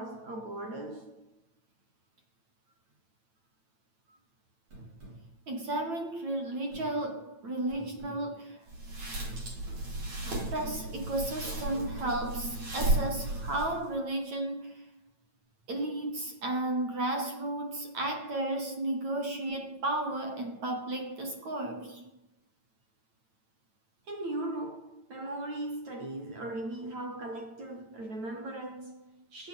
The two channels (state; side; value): late; left; 9.0 ms